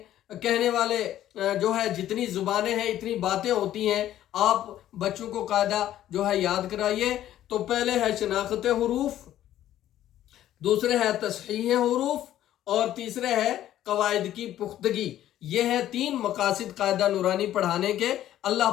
کہنے والے جو ہے جتنی زبانیں ہیں اتنی باتیں ہوتی ہیں، آپ بچوں کو قاعدہ جو ہے یاد کرائیے۔ تو پہلے ہے شناخت حروف، دوسرے ہے تصحیح حروف، اور تیسرے ہے قواعد کی پختگی۔ یہ ہے 3 مقاصد قاعدہ نورانی پڑھانے کے۔ اللہ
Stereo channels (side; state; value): right; quieter; 12.5 dB